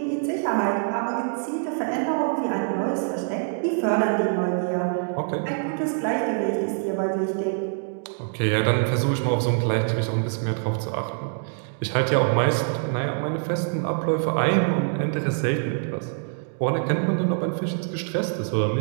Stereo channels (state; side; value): silent; left; 59 dB below the other